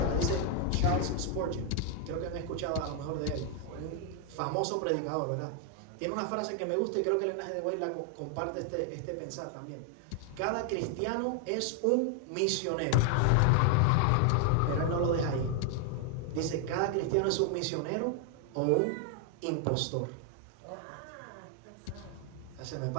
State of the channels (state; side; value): different; both; correlation 0.00